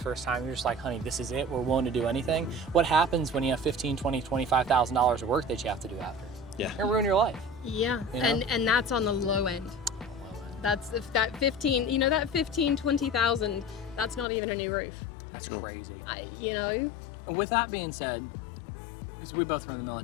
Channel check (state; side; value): drops out; right; at 14.2 s